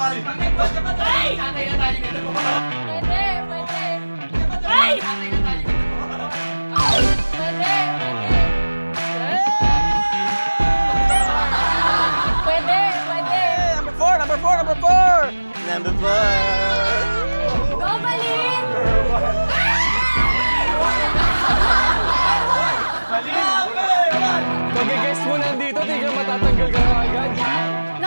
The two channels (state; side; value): inverted; both; correlation -1.00